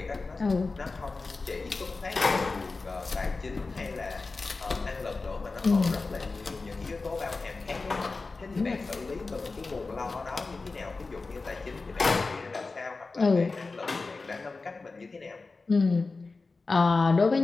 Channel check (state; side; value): quieter; right; 3.8 dB